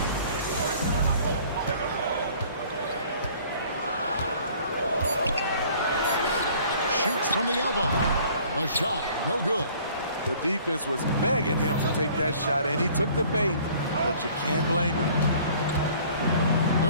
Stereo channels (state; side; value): inverted; both; correlation -0.54